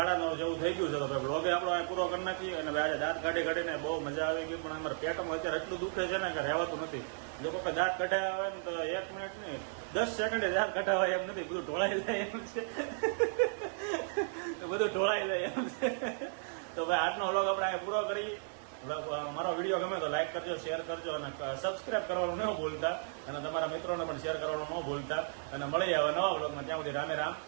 જેવું થઈ ગયું છે. તો બ્લોગે આપણો અહીં પૂરો કરી નાખીએ. અને આજે દાંત કાઢીને બહુ મજા આવી ગઈ, પણ અમારા પેટમાં અત્યારે એટલું દુખે છે ને કે રહેવાતું નથી. લોકો કે દાંત કઢાવ્યા હોય ને તો 1 મિનિટ નહીં 10 સેકન્ડે દાંત કઢાવાય એમ નથી, બધું ઢોળાઈ જાય એમ છે. બધું ઢોળાઈ જાય એમ છે. તો ભાઈ આજનો વ્લોગ આપણે અહીં પૂરો કરી. મારો વિડીયો ગમે તો લાઈક કરજો, શેર કરજો અને સબસ્ક્રાઇબ કરવાનું ન ભૂલતા, અને તમારા મિત્રોને પણ શેર કરવાનું ન ભૂલતા. અને મળી આવે નવા વ્લોગમાં, ત્યાં સુધી રામે રામ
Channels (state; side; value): silent; left; 55 dB below the other